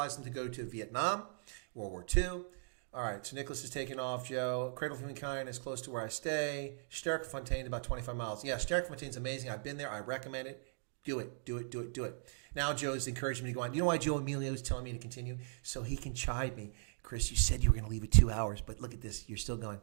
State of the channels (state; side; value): silent; left; digital silence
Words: them to go to Vietnam, World War II. All right, so Nicholas is taking off, Joe. Cradle of Humankind is close to where I stay. Sterkfontein, about 25 miles. Yeah, Sterkfontein's amazing. I've been there. I recommend it. Do it. Now Joe's encouraging me to go on. You know why Joe Emilio is telling me to continue? So he can chide me. Chris, you said you were going to leave at 2 hours, but look at this. You're still going.